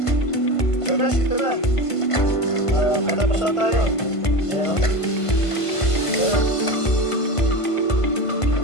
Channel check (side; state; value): right; late; 1.5 ms